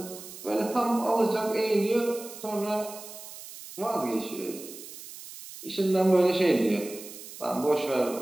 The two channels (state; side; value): noise; right; hiss, 14 dB below the sound